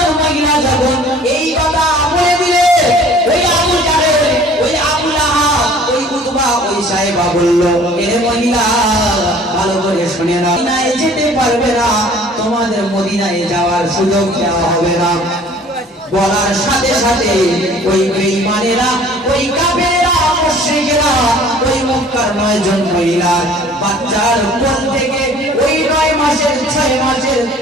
মহিলা যখন এই কথা বলে দিলে, ওই আবু জাহেল, ওই আবু লাহাব, ওই উতবা, ওই সাইবা বলল, এ মহিলা ভালো করে শুনে নাও, মদিনায় যেতে পারবে না, তোমাদের মদিনায় যাওয়ার সুযোগ দেওয়া হবে না। বলার সাথে সাথে ওই বেঈমানেরা, ওই কাফেররা, মুশরিকরা ওই মক্কার 9 জন মহিলা বাচ্চার কোল থেকে ওই 9 মাসের 6 মাসের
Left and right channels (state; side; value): normal; both; correlation 0.51